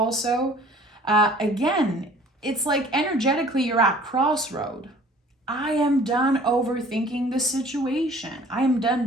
Again, it's like energetically you're at crossroad. I am done overthinking the situation. I am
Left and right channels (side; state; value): both; normal; correlation 0.51